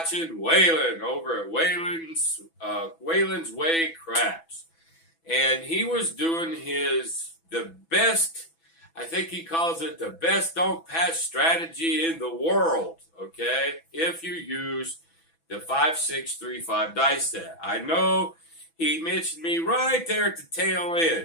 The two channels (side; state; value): right; late; 6.1 ms